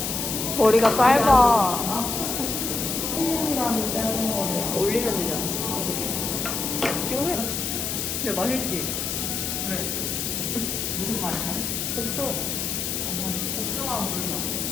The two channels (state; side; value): noise; left; hiss, 2 dB below the sound